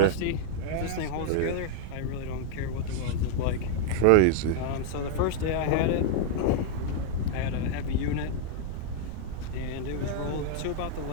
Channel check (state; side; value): different; both; correlation 0.00